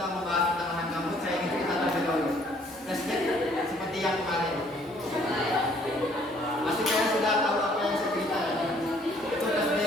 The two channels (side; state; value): both; normal; correlation 0.61